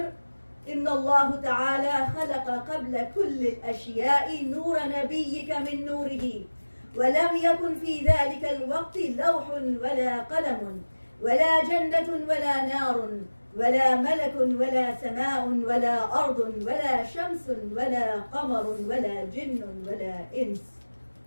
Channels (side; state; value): both; inverted; correlation -1.00